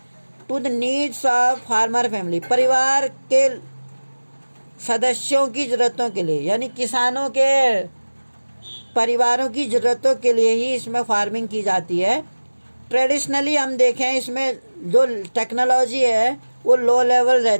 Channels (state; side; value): inverted; both; correlation -1.00